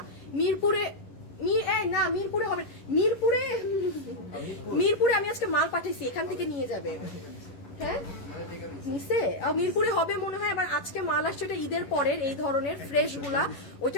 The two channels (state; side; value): late; right; 11 ms